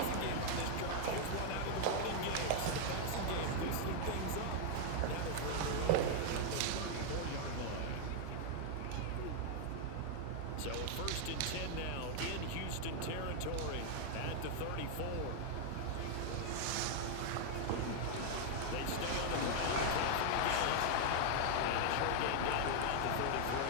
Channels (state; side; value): different; both; correlation 0.00